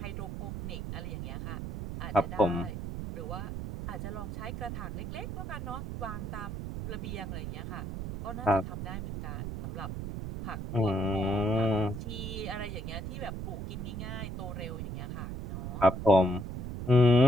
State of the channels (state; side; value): noise; right; rumble, 5 dB below the sound